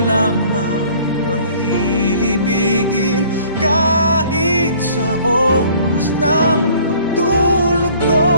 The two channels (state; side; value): inverted; both; correlation -0.54